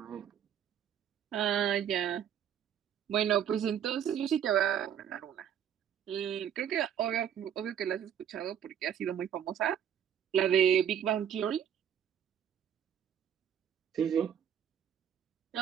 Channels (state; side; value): quieter; left; 9.2 dB